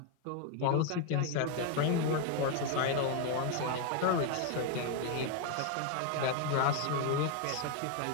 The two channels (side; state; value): both; different; correlation 0.01